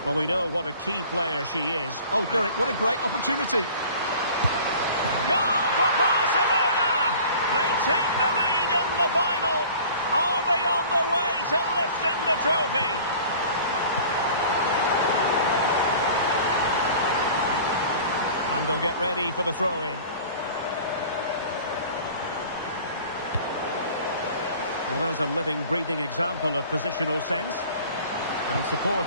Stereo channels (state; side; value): inverted; both; correlation -0.45